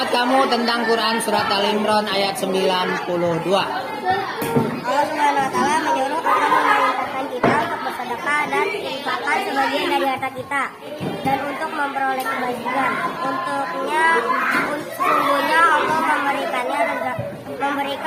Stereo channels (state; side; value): identical; both; correlation 1.00